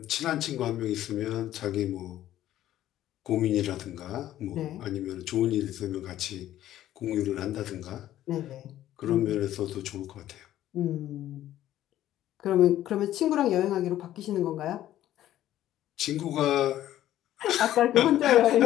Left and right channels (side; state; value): right; quieter; 13.0 dB